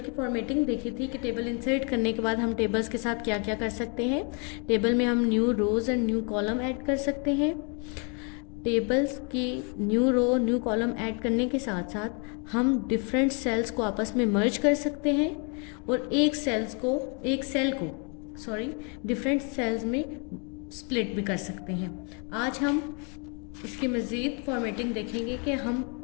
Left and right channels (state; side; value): quieter; right; 36.3 dB